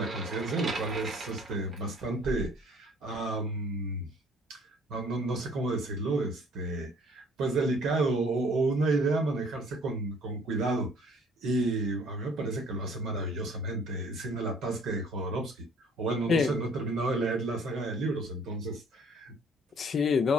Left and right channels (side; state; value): both; normal; correlation 0.56